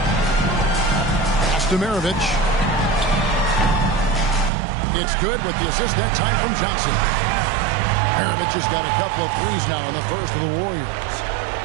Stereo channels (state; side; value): drops out; left; at 4.5 s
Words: Pass to Maravich. It's good with the assist that time from Johnson. Maravich has got a couple of threes now in the first of the Warriors.